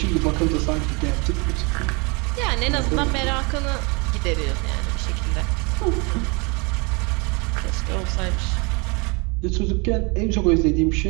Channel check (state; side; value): quieter; left; 30.2 dB